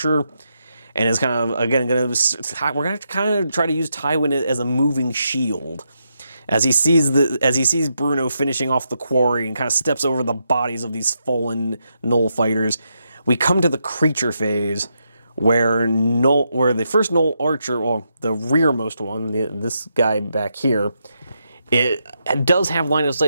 And is kind of, again, we're going to kind of try to use Tywin as a moving shield. As he sees Bruno finishing off the quarry and kind of steps over the bodies of these fallen Gnoll fighters, we come to the creature phase, where the first Gnoll archer, well, the rearmost one, this guy back here, it does have line of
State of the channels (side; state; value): both; inverted; correlation -0.82